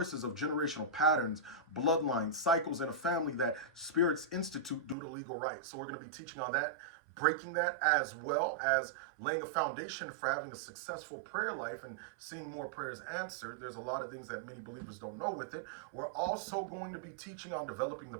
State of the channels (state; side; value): drops out; left; at 5.0 s